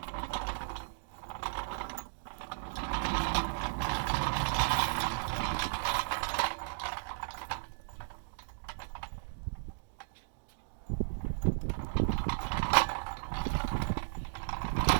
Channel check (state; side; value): silent; left; digital silence